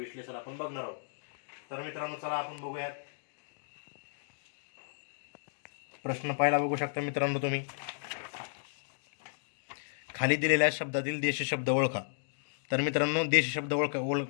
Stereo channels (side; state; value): right; silent; digital silence